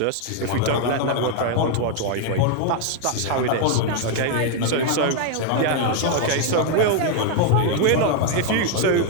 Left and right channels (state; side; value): different; both; correlation 0.00